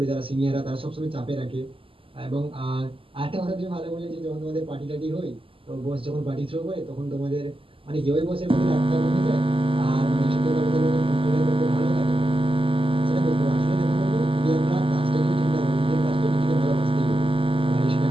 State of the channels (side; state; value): left; late; 0.26 ms